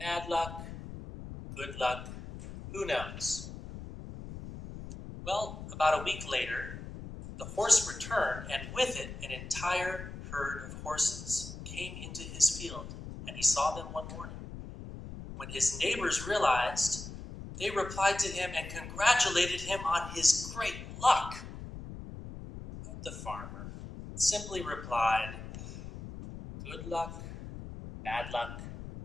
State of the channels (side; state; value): left; noise; rumble, 10 dB below the sound